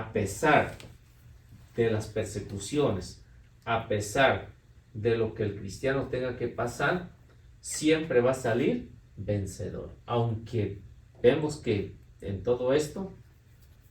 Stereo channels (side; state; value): both; identical; correlation 1.00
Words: pesar de las persecuciones, a pesar de lo que el cristiano tenga que pasar, siempre va a salir vencedor. Aunque vemos que en todo esto